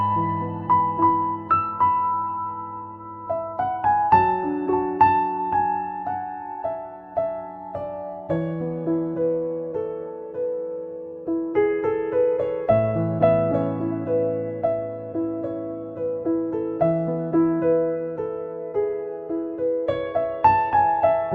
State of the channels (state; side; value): identical; both; correlation 1.00